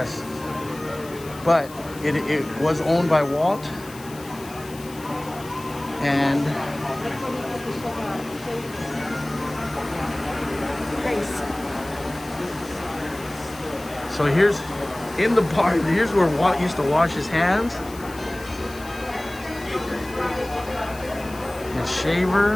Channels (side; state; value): left; noise; hiss, 18 dB below the sound